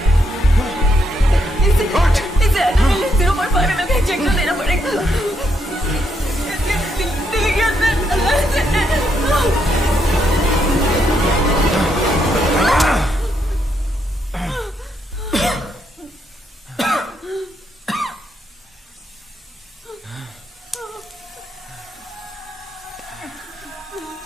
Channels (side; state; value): both; normal; correlation 0.77